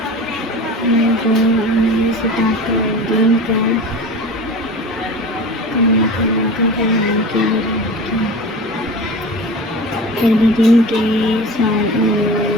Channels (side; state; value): both; normal; correlation 0.34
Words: کو اہل ستاق الدین کا موقع فراہم کیا۔ پھر بھی دن کے ستزادہ